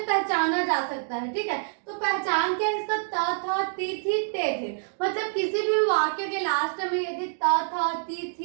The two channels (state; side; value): silent; left; digital silence